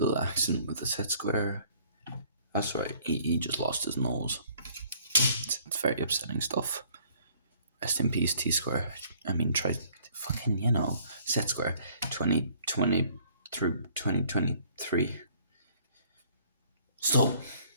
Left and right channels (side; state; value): both; inverted; correlation -0.58